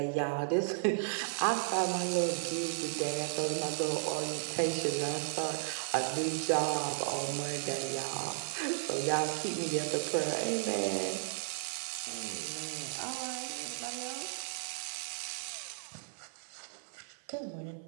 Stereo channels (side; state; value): left; silent; 55 dB below the other